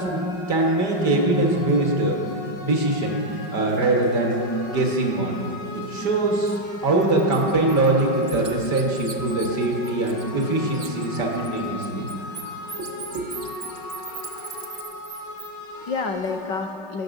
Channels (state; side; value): late; right; 5.0 ms